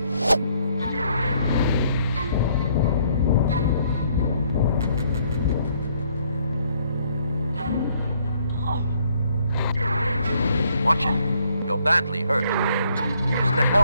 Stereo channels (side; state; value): both; inverted; correlation -0.67